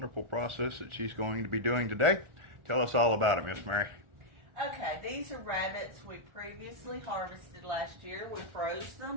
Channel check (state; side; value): late; left; 1.4 ms